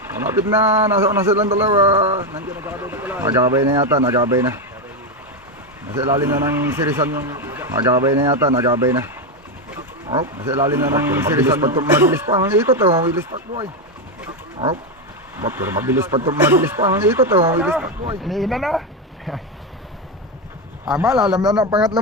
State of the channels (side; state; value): both; normal; correlation 0.09